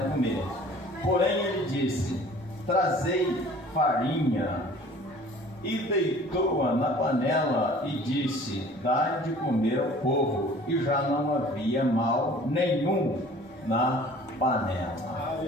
comer. Porém ele disse: trazei farinha. E deitou-a na panela e disse: dai de comer ao povo. E já não havia mal nenhum na panela.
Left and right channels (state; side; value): normal; both; correlation 0.49